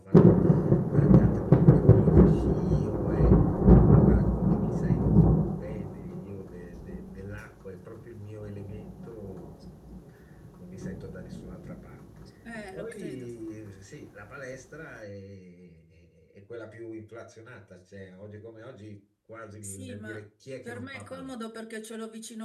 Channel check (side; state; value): both; identical; correlation 1.00